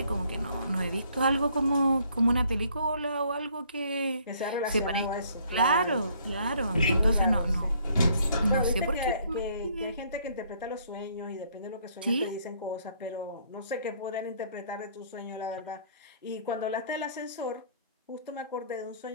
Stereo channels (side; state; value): both; inverted; correlation -0.63